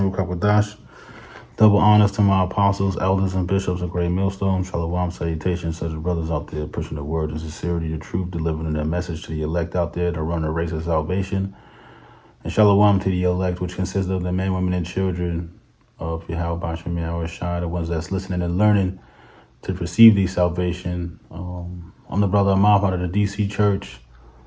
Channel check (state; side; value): identical; both; correlation 1.00